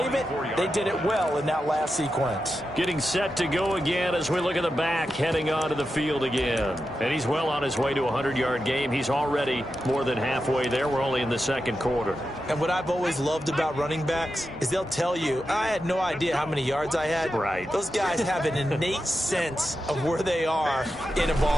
it, they did it well in that last sequence. Getting set to go again as we look at the back heading onto the field again. And he's well on his way to a 100-yard game. He's already more than halfway there. We're only in the second quarter. And what I've always loved about running backs is they'll tell you, I had no idea how many yards I had. Right. Those guys have an innate sense of where they are in a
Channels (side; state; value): both; normal; correlation 0.89